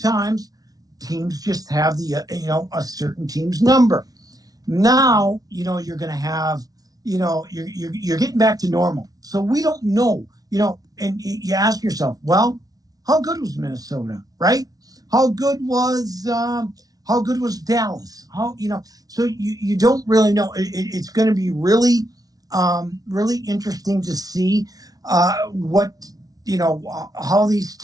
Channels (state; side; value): late; left; 0.18 ms